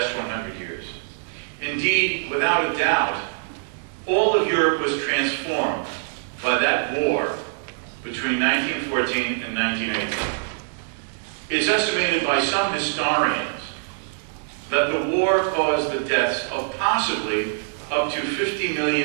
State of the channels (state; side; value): silent; left; digital silence